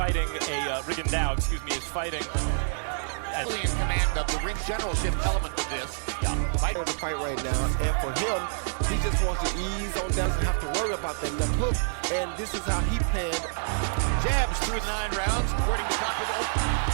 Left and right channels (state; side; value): silent; left; digital silence